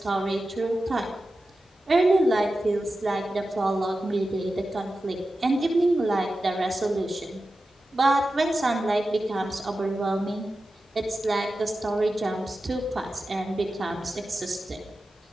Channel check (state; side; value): normal; both; correlation 0.93